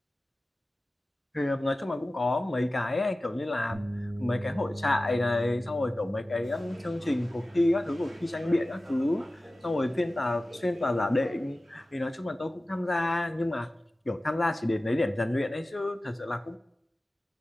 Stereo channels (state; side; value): normal; both; correlation 0.96